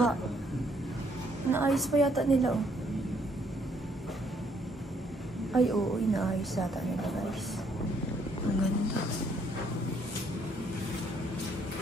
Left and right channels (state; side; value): normal; both; correlation 0.68